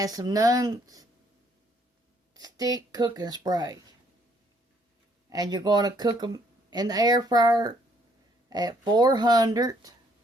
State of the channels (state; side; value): normal; both; correlation 0.66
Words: some non-stick cooking spray. And you're going to cook them in the air fryer at 400